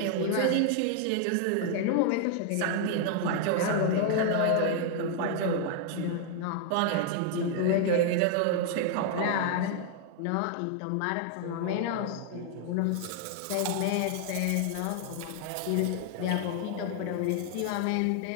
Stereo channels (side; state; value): both; different; correlation 0.00